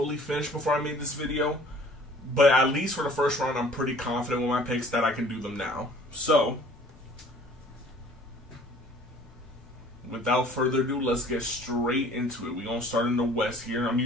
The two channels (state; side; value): normal; both; correlation 0.52